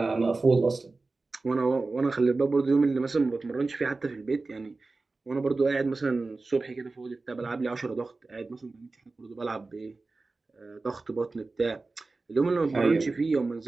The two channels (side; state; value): left; quieter; 3.6 dB